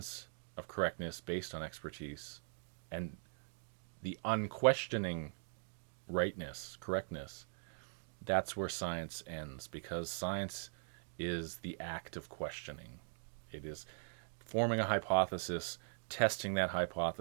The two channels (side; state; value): left; silent; digital silence